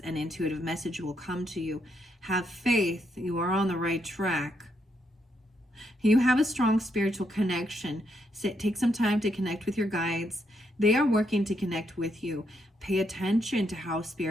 and intuitive message will come to you. Have faith. You are on the right track. You have a strong spiritual connection. Take some time to connect with your guides. They are working to connect with you. Pay attention to how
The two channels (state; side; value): normal; both; correlation 0.78